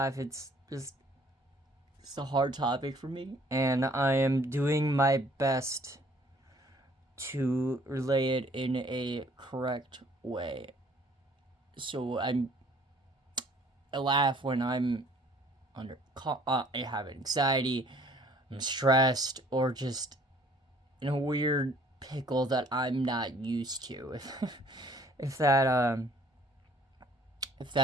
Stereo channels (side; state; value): both; normal; correlation 0.57